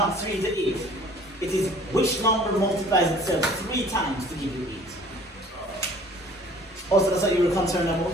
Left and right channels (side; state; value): both; normal; correlation 0.52